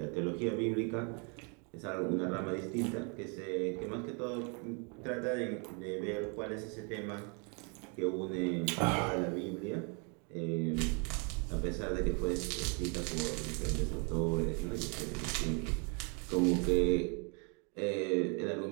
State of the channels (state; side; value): quieter; left; 35.6 dB